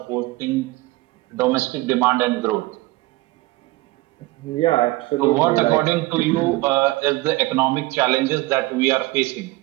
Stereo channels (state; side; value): quieter; left; 20.4 dB